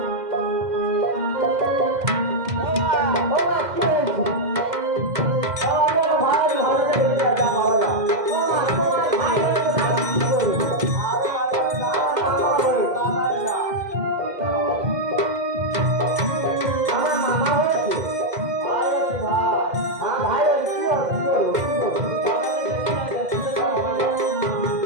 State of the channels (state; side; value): late; left; 2.0 ms